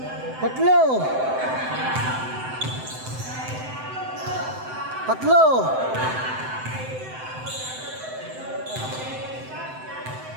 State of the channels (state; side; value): late; left; 7.8 ms